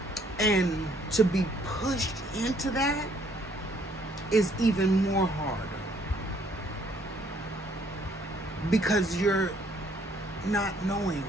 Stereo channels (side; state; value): both; normal; correlation 0.65